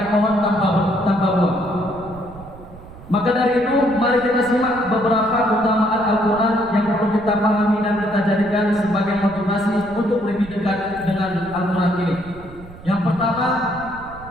pohon tanpa buah. Maka dari itu, mari kita simak beberapa keutamaan Al-Quran yang perlu kita pahami dan kita jadikan sebagai motivasi untuk lebih dekat dengan Al-Quran ini. Yang pertama,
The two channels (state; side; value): noise; right; rumble, 18 dB below the sound